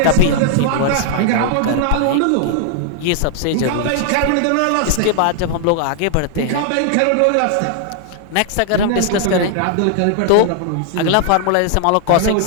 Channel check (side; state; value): both; different; correlation 0.00